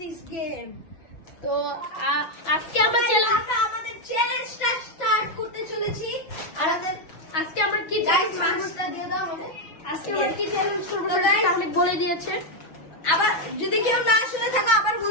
game. তো আজকে আমরা আমাদের চ্যালেঞ্জটা স্টার্ট করতে চলেছি। আর আজকে আমরা কি গাইজ মাস্কটা দিয়ে দাও আমাকে। আজকে আমরা কি চ্যালেঞ্জ করবো তো সেটা guys, আমি বলে দিয়েছে। আবার যদি কেউ না শুনে থাকো আবার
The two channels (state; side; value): late; right; 6.1 ms